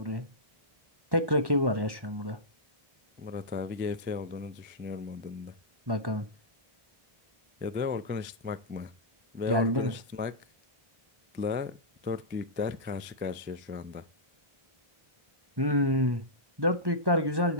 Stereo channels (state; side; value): late; left; 1.1 ms